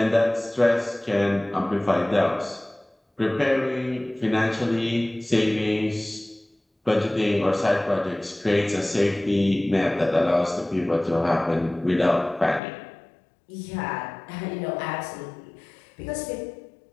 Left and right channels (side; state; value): right; drops out; at 12.6 s